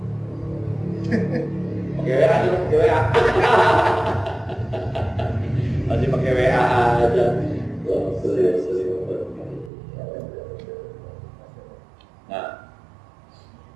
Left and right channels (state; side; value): drops out; left; at 9.7 s